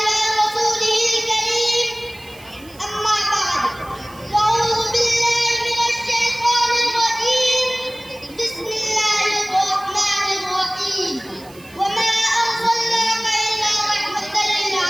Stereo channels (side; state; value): right; noise; hiss, 23 dB below the sound